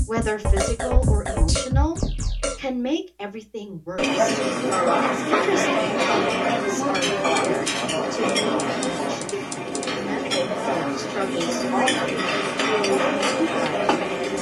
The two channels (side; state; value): both; identical; correlation 1.00